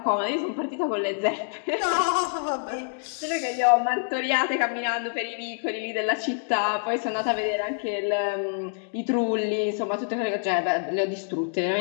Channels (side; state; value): right; silent; digital silence